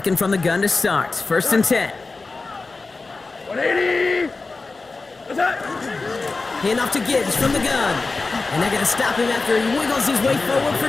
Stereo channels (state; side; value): quieter; right; 3.8 dB